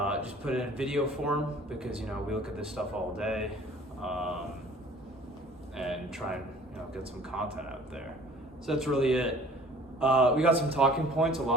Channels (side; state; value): both; normal; correlation 0.51